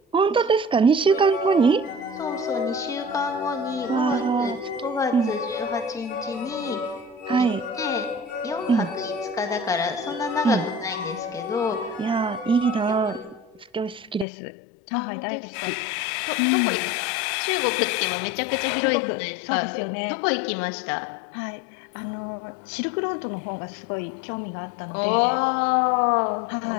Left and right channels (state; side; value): drops out; right; at 14.2 s